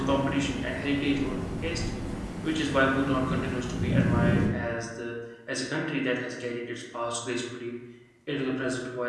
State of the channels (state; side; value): identical; both; correlation 1.00